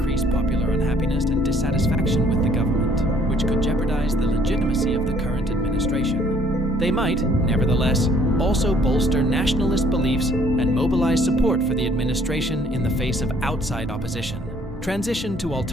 popular unhappiness and dissatisfaction with the government, which could jeopardize the legitimacy of the current administration. They might, nevertheless, also bolster nationalist beliefs and mobilize support for the administration in the face of outside opposition. Transition to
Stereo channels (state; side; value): normal; both; correlation 0.60